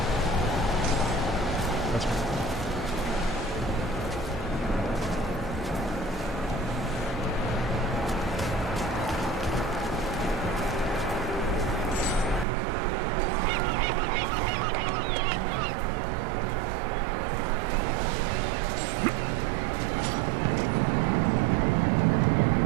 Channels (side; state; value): left; drops out; at 12.5 s